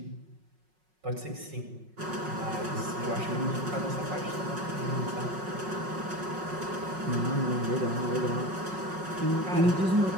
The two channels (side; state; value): left; late; 5.4 ms